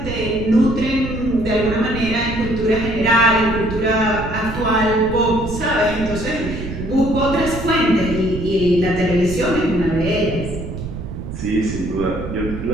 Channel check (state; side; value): noise; right; rumble, 8 dB below the sound